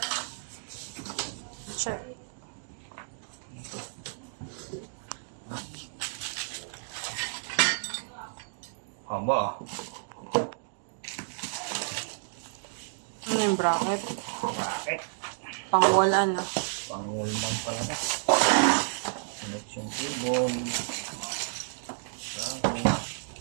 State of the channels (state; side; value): silent; left; digital silence